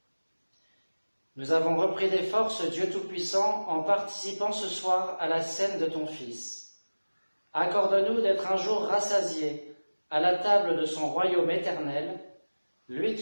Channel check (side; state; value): both; inverted; correlation -1.00